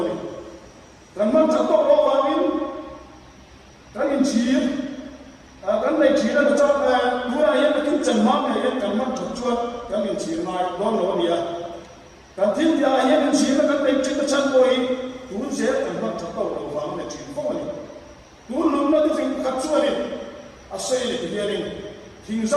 ni kan man chắc tóc lo vào in kan in chỉ kan này chỉ là cho đua này là cái chân mát này kan man chắc chuột kan in chỉ mai lo lo bia kan thiên dia hiện in chỉ là kan này chỉ là chân bôi tu sẽ kan man chắc tóc lo vào này chỉ không này tu lúc nó tu phải cắt chuột này à xây này thì này hình ra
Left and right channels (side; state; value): both; identical; correlation 1.00